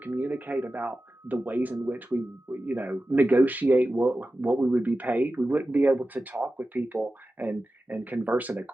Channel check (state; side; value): normal; both; correlation 0.94